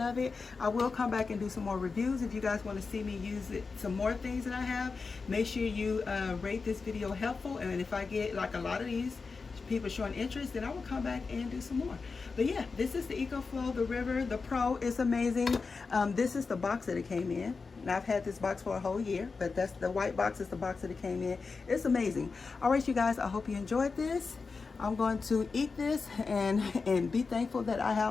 it. I will come back and do some more reviews. If you guys want to see me use it, some more things that I have, make sure you rate this video helpful. And if I get like a lot of these people showing interest, then I will come back and do some more. But yeah, this is the EcoFlow, the River, the Pro. It's amazing. This is the box that it came in. Now, I've had this box for a whole year, but that's the white box is the box that it came in. It's amazing. All right, you guys, I hope you enjoyed this. I'm going to eat this and be thankful that I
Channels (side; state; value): right; quieter; 4.5 dB